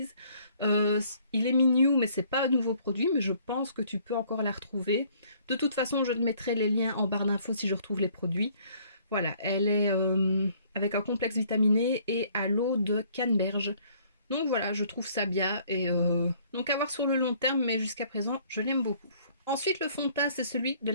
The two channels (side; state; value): both; inverted; correlation -0.60